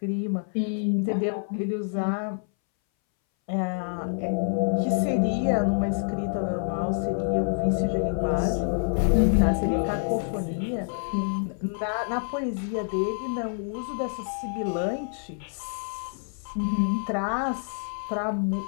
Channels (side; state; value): right; silent; 60 dB below the other